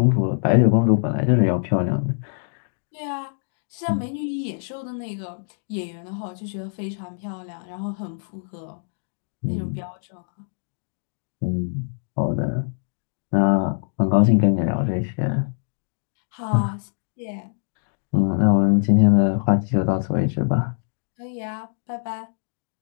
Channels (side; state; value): right; silent; digital silence